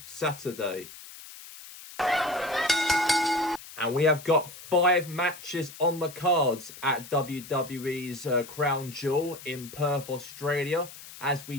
Saturday. And we have got 5 matches on the cards at WWE's Crown Jewel in Perth, Australia. As we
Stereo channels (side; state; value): left; noise; hiss, 16 dB below the sound